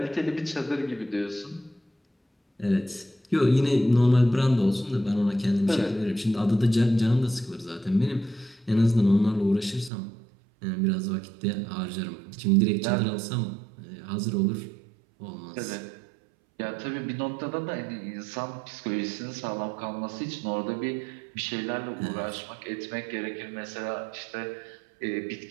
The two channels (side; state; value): left; drops out; at 9.9 s